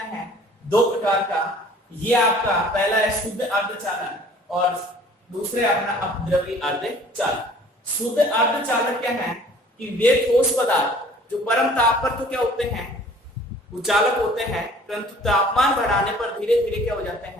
है, 2 प्रकार का। ये आपका पहला है शुद्ध अर्धचालक और दूसरे अपना अपद्रवी अर्धचालक। शुद्ध अर्धचालक क्या है कि वे ठोस पदार्थ जो परम ताप पर तो क्या होते हैं, वो चालक होते हैं, परंतु तापमान बढ़ाने पर धीरे धीरे क्या हो जाते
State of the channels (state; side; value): normal; both; correlation 0.52